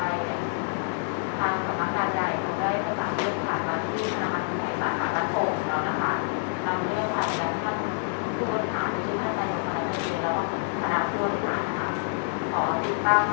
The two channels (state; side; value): silent; right; digital silence